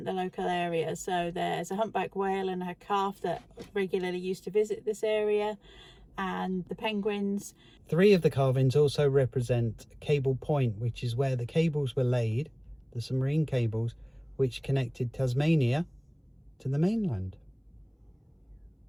the local area. So there's a humpback whale and her calf that regularly used to visit this area, and the penguins. 3 of the carvings also represent Cable Point, which is where the cables were laid, the submarine cables, which connected Tasmania to the mainland.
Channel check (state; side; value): identical; both; correlation 1.00